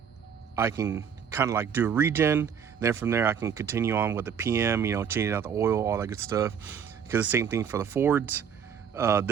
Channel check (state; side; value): quieter; left; 7.6 dB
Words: can kind of like do a regen. Then from there, I can continue on with the PM, changing out the oil, all that good stuff. Because the same thing for the Fords.